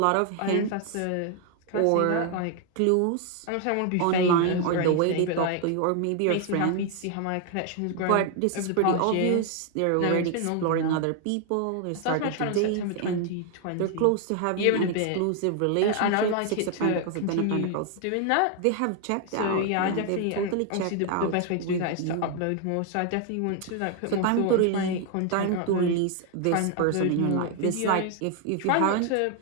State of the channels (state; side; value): different; both; correlation 0.00